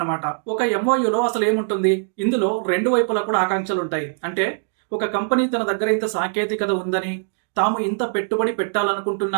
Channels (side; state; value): left; silent; digital silence